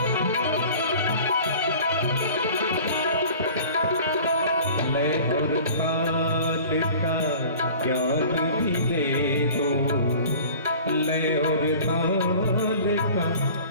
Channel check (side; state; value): both; inverted; correlation -0.44